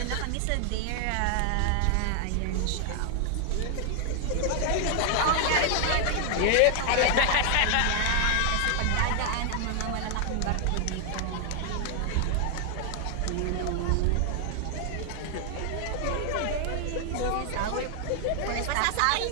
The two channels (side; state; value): both; different; correlation 0.00